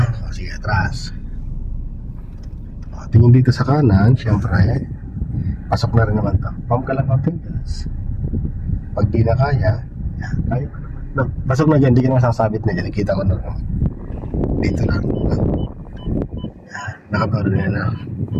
O, sige, atras. O, tingin dito sa kanan, syempre, pasok na rin naman ito. Pump ka lang ng gas. Pag di na kaya, yan, kaya pa naman. No, pasok na dyan, di ka na masasabit na dyan. Kita ko na naman. Dito lang. Yan, nakabaro na yan na.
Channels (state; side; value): identical; both; correlation 1.00